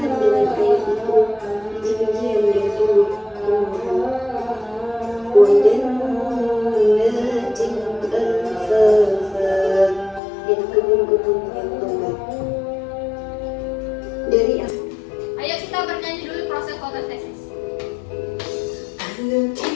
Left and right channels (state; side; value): drops out; right; at 10.2 s